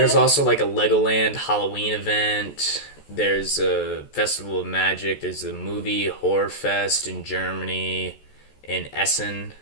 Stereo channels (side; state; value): right; late; 14 ms